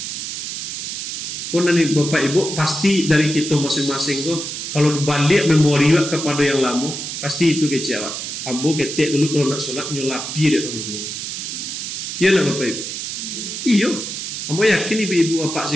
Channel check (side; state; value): right; noise; hiss, 5 dB below the sound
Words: Nanti Bapak Ibu pasti dari kita masing-masing tuh kalau balik memori kepada yang lama pasti itu kecewa. Ambo ketek dulu kalau nak sholat nyolapi dia tangguh. Iya nak Bapak Ibu. Iyo. Ambo yakin ibu bapak